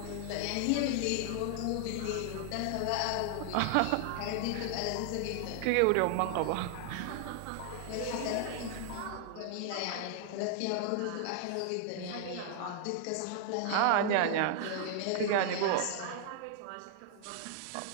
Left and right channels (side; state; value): both; different; correlation 0.00